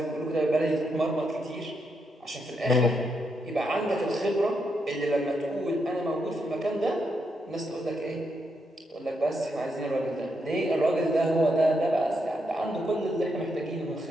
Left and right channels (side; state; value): both; normal; correlation 0.81